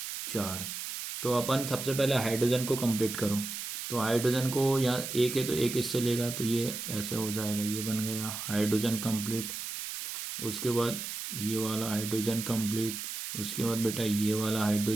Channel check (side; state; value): right; noise; hiss, 6 dB below the sound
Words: 4। तो अपन सबसे पहले हाइड्रोजन को कंप्लीट करो। तो हाइड्रोजन को यहाँ एक है तो एक इससे लेगा तो ये ऐसे हो जाएगा। ये बन गया हाइड्रोजन कंप्लीट। उसके बाद ये वाला हाइड्रोजन कंप्लीट। उसके बाद बेटा ये वाला